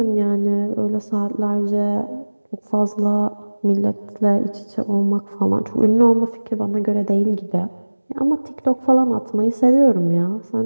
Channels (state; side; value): inverted; both; correlation -1.00